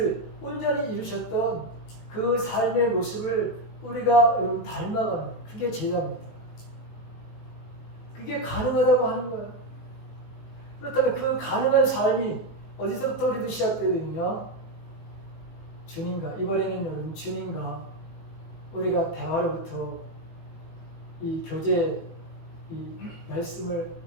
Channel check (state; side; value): late; right; 19 ms